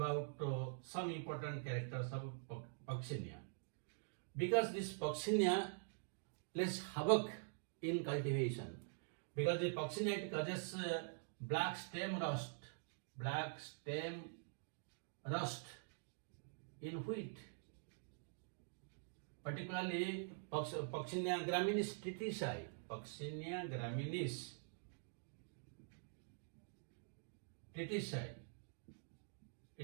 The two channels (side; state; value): left; silent; digital silence